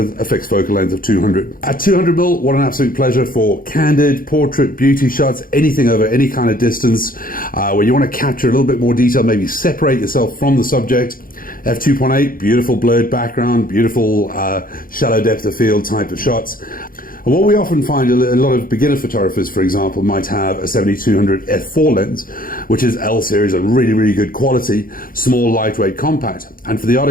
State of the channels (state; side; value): late; right; 0.41 ms